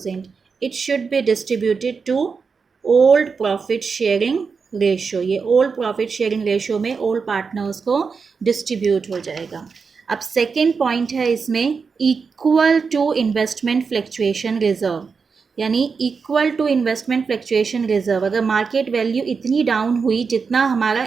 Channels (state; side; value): quieter; left; 5.3 dB